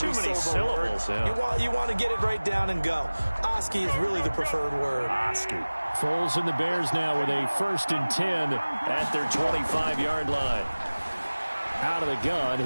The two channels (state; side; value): inverted; both; correlation -1.00